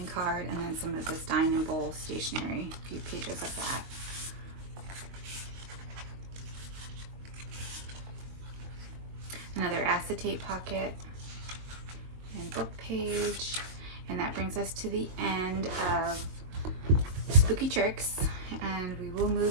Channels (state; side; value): late; left; 22 ms